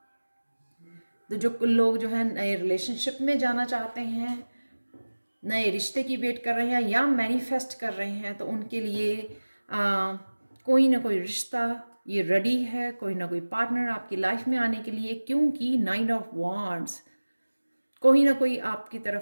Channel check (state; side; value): inverted; both; correlation -1.00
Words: तो जो लोग जो है नए रिलेशनशिप में जाना चाहते हैं, नए रिश्ते की वेट कर रहे हैं या मैनिफेस्ट कर रहे हैं, तो उनके लिए कोई ना कोई रिश्ता ये रेडी है, कोई ना कोई पार्टनर आपकी लाइफ में आने के लिए, क्योंकि 9 ऑफ वांड्स, कोई ना कोई आपकी